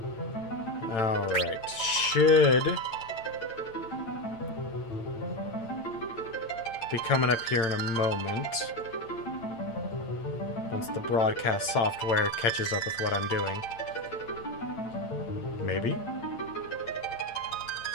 Alright, should be coming up here in a moment. Once the broadcast software catches up with what I'm doing. Maybe?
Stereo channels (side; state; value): right; late; 8.9 ms